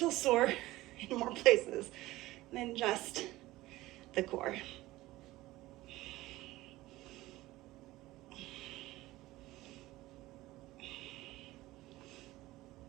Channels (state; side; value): quieter; left; 17.7 dB